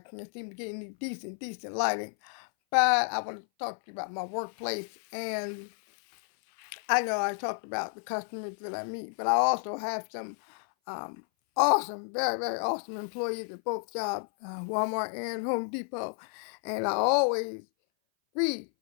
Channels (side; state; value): right; silent; 57 dB below the other